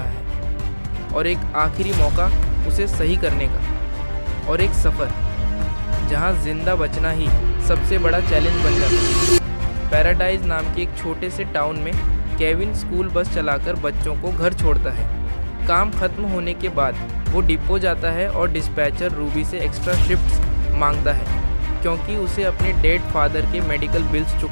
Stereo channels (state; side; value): inverted; both; correlation -1.00